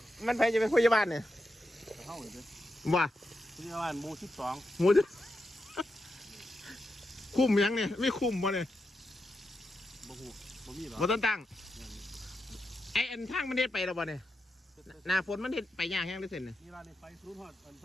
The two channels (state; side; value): normal; both; correlation 0.86